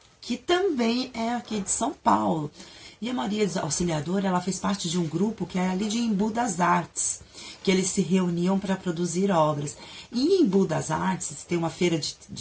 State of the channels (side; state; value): both; identical; correlation 1.00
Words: que também é aqui de São Paulo. E a Maria Auxiliadora, ela fez parte de um grupo que era ali de Embu das Artes, que eles se reuniam para produzir obras. E em Embu das Artes, tem uma feira